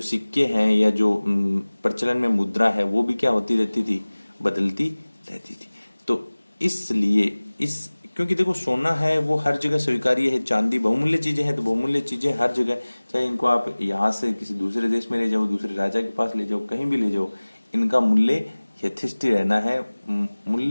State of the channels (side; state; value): both; inverted; correlation -1.00